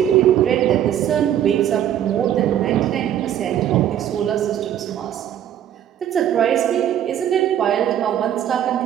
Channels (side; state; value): left; quieter; 10.6 dB